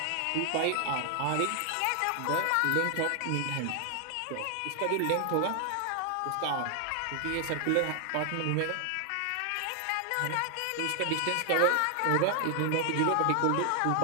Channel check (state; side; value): different; both; correlation 0.00